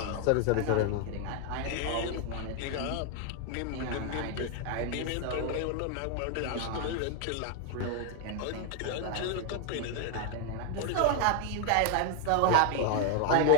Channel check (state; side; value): different; both; correlation 0.01